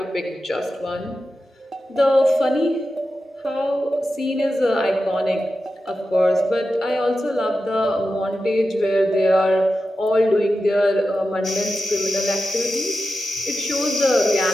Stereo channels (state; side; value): normal; both; correlation 0.91